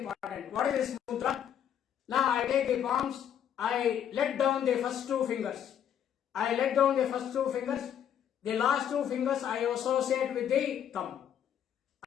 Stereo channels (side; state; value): right; quieter; 9.4 dB